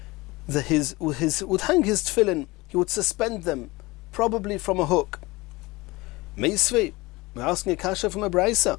his tefillin, he would suspend them, probably from a hook. Meisvei, we're asking a kasha from a braisa.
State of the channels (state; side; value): quieter; right; 22.1 dB